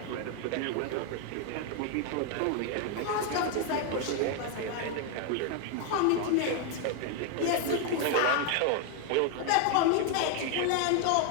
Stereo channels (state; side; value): different; both; correlation 0.00